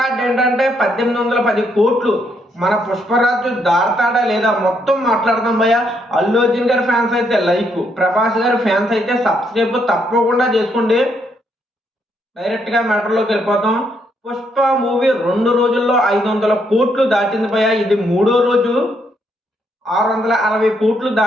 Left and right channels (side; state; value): both; normal; correlation 0.74